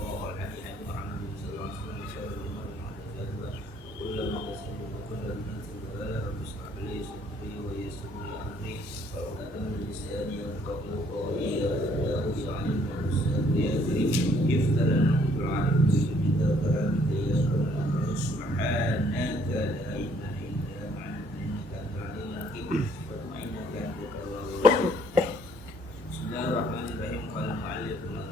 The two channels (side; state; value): both; normal; correlation 0.63